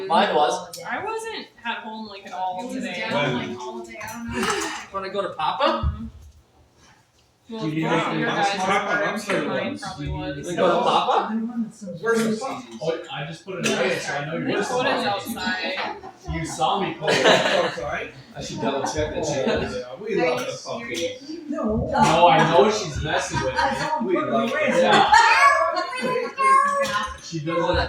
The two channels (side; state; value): both; identical; correlation 1.00